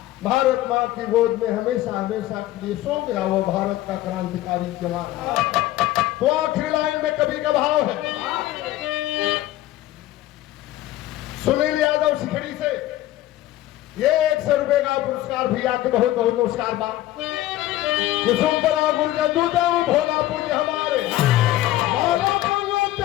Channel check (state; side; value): quieter; right; 15.1 dB